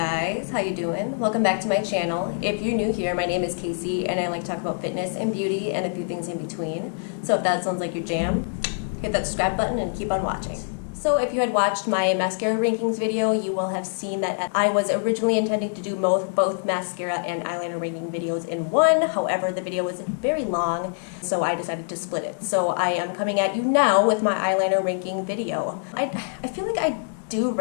how you doing? Welcome back to my channel. If you're new here, my name is Casey and I like to talk about fitness and beauty and a few things in between. So if that sounds like your jam, hit that subscribe button and keep on watching. So if you had watched my mascara rankings video, you will have seen that I was originally intending to do both mascara and eyeliner ranking videos in one. However, the video was very long, so I decided to split it. So I am coming at you now with my eyeliner ranking video. I feel like I do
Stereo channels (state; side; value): silent; right; digital silence